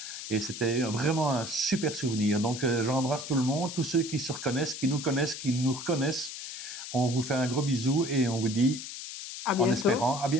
Et c'était vraiment un super souvenir. Donc j'embrasse tout le monde, tous ceux qui se reconnaissent, qui nous connaissent, qui nous reconnaissent. On vous fait un gros bisou et on vous dit, en espérant, à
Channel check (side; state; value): left; noise; hiss, 9 dB below the sound